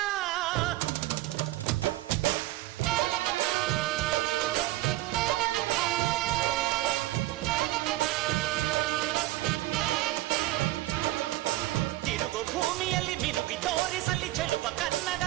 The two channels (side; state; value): left; quieter; 16.9 dB